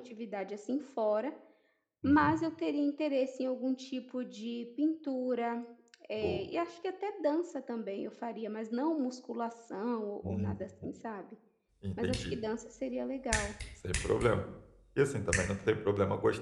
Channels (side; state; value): both; identical; correlation 1.00